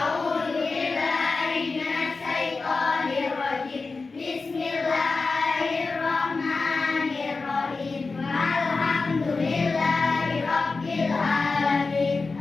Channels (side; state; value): right; quieter; 4.0 dB